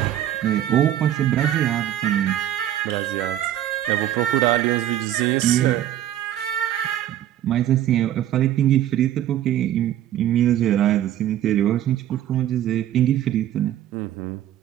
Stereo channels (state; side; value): quieter; left; 11.9 dB